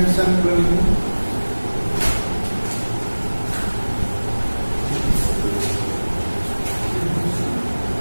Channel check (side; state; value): both; inverted; correlation -1.00